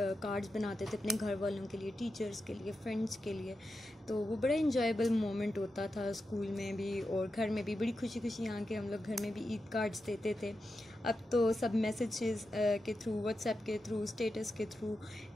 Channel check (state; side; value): normal; both; correlation 0.89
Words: कार्ड्स बनाते थे अपने घर वालों के लिए, टीचर्स के लिए, फ्रेंड्स के लिए। तो वो बड़ा इंजॉयबल मोमेंट होता था, स्कूल में भी और घर में भी बड़ी खुशी खुशी यहाँ के हम लोग घर में भी ईद कार्ड्स देते थे। अब तो सब मैसेजेस के थ्रू, व्हाट्सएप के थ्रू, स्टेटस के थ्रू